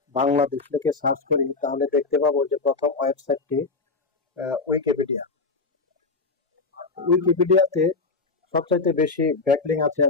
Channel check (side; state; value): right; quieter; 4.0 dB